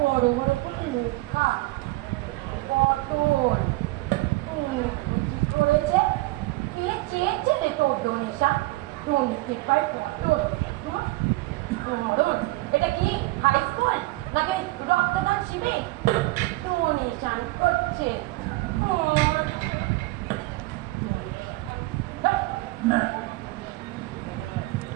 বড় করে লেখা পটল। কি করেছে? কে চেয়েছে রে তোর ডোনেশন? ডোনেতে পায় পটল। পটল এটা কি হাই স্কুল নাকি রক্তদান শিবির? ডোনেশন করছে।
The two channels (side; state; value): left; quieter; 20.7 dB